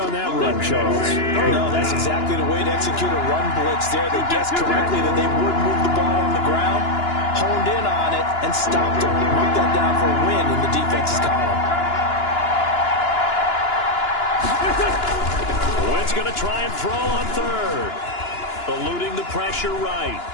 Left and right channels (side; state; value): right; late; 2.9 ms